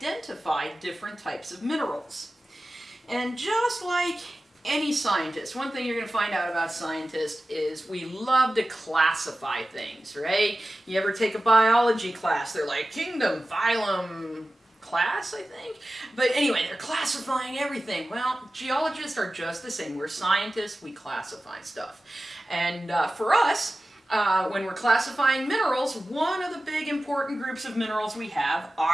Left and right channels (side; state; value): both; normal; correlation 0.95